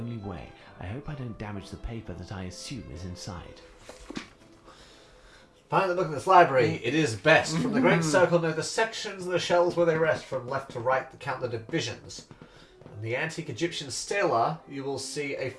way. I hope I don't damage the paper that I assume is inside. Finally, look at this library. It is best. From the Great Circle, know the sections of the shelves where they rest. From left to right, count the divisions. In the antique Egyptian stela, you will see a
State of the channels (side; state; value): both; identical; correlation 1.00